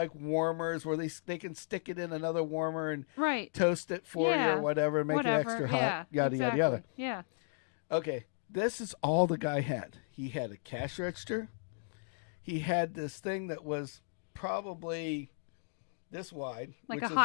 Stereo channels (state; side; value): silent; right; digital silence